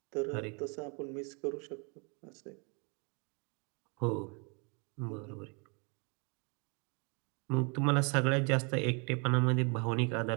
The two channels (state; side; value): quieter; left; 33.7 dB